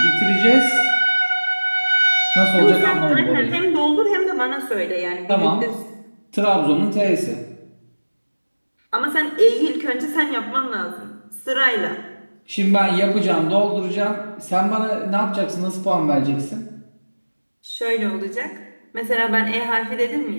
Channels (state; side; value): inverted; both; correlation -1.00